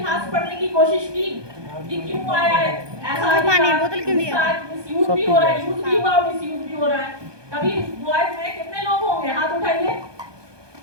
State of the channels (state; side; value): late; left; 1.2 ms